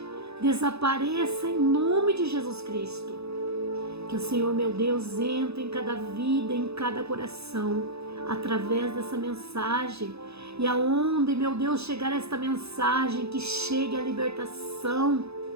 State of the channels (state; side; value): late; left; 0.79 ms